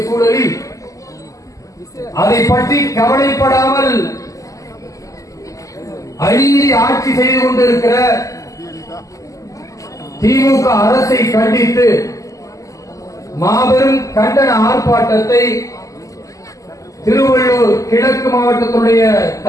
சூழலில் அதை பற்றி கவலைப்படாமல் அநீதி ஆட்சி செய்து கொண்டிருக்கிற திமுக அரசை கண்டித்து மாபெரும் கண்டன ஆர்ப்பாட்டத்தை திருவள்ளூர் கிழக்கு மாவட்டத்துடைய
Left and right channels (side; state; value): right; late; 0.16 ms